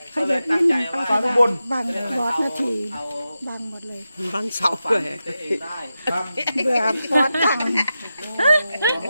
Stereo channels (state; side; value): inverted; both; correlation -0.91